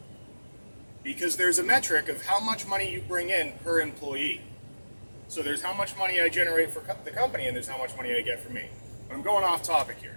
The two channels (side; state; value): both; inverted; correlation -1.00